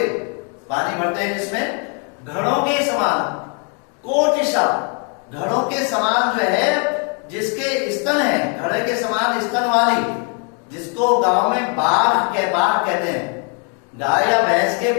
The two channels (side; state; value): right; quieter; 39.0 dB